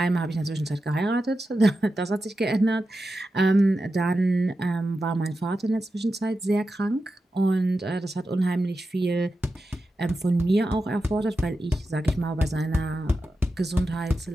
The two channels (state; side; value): normal; both; correlation 0.91